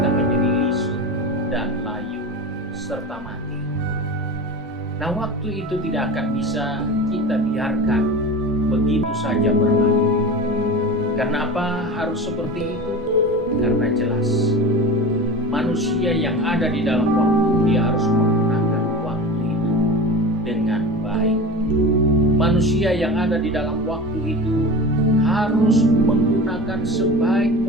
menjadi lisut dan layu serta mati. Nah, waktu itu tidak akan bisa kita biarkan begitu saja berlalu. Karena apa harus seperti itu? Karena jelas manusia yang ada di dalam waktu, dia harus menggunakan waktu itu dengan baik. Manusia yang ada di dalam waktu itu harus menggunakan sebaik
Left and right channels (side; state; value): both; normal; correlation 0.31